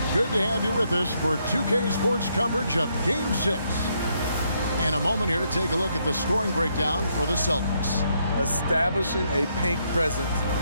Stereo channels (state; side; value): inverted; both; correlation -0.75